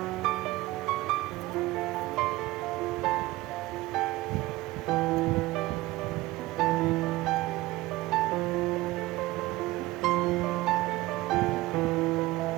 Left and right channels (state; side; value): quieter; left; 18.5 dB